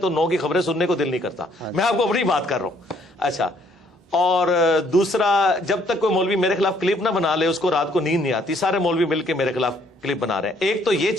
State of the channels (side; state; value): both; normal; correlation 0.65